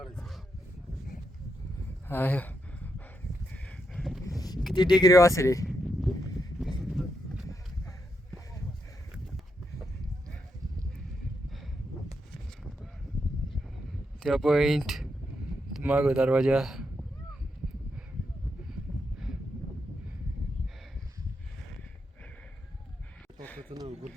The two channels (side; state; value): both; normal; correlation 0.82